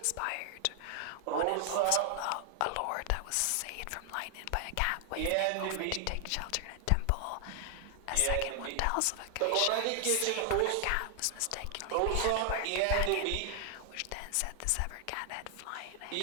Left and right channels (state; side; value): different; both; correlation 0.00